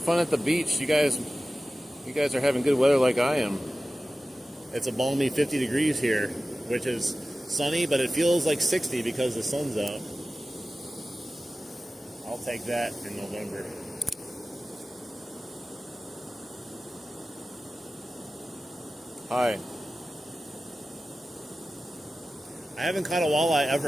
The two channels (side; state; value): both; normal; correlation 0.95